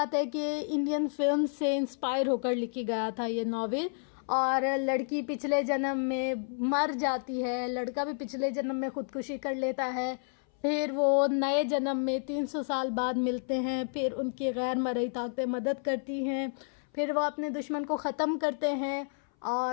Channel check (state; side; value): silent; right; 57 dB below the other